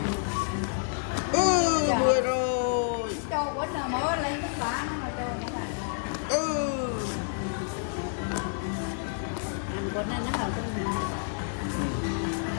10 rồi. Cho quýnh rồi mới lên tất cả nó anh quýnh nó hồi cái gì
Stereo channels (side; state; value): right; silent; digital silence